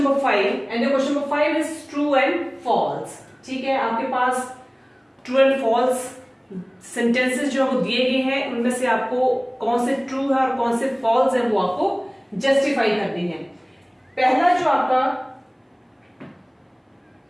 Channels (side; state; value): both; identical; correlation 1.00